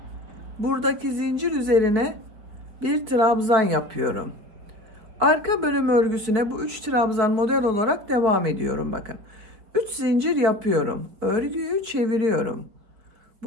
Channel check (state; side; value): late; left; 5.0 ms